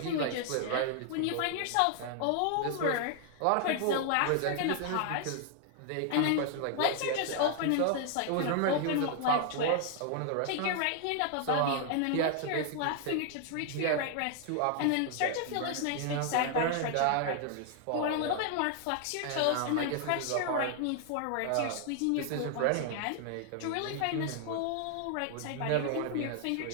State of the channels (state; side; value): different; both; correlation 0.00